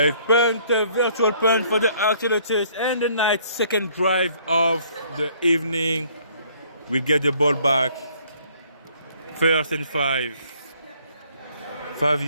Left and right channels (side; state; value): both; inverted; correlation -0.61